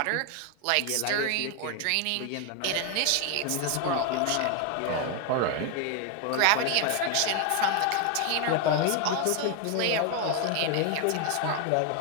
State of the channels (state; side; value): different; both; correlation 0.01